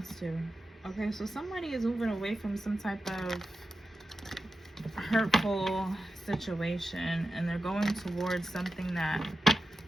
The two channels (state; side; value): normal; both; correlation 0.91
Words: to. Okay, so somebody is moving away from some type of hurtful situation, and they're going towards something that,